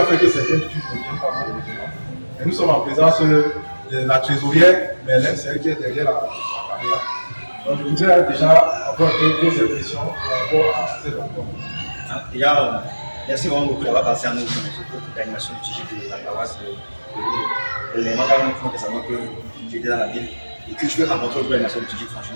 faire que certaines études ne viennent pas malheureusement. Et nous sommes en présence de la trésorière, mais elle, c'est elle qui est derrière la caméra. Donc je voudrais déjà avoir quelques impressions par rapport à cette rencontre. Déjà, merci vraiment beaucoup d'avoir passé à nous pour l'animation du TG de la paroisse. Les magasins font que savoir que j'étais dans la ville et que je veux rencontrer l'animation du TG.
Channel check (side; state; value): both; inverted; correlation -1.00